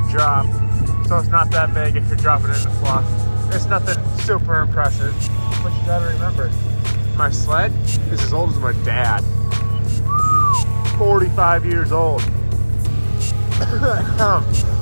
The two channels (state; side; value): inverted; both; correlation -1.00